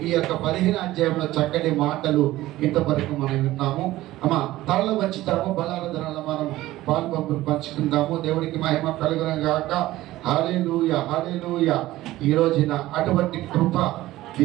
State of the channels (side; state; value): left; quieter; 16.3 dB